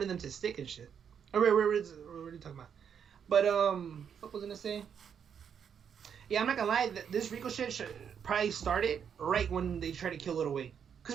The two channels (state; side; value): quieter; left; 7.7 dB